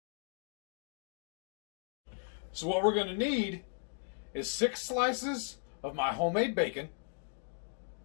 So what we're gonna need is 6 slices of my homemade bacon,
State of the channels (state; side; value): silent; right; 53 dB below the other